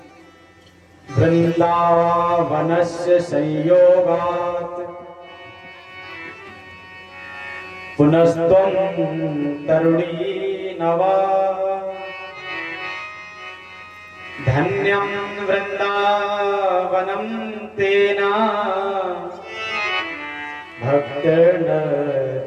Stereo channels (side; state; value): both; identical; correlation 1.00